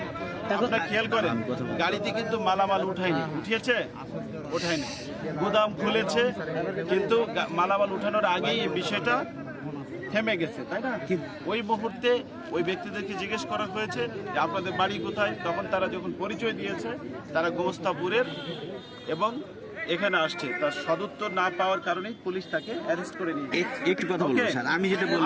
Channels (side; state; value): both; identical; correlation 1.00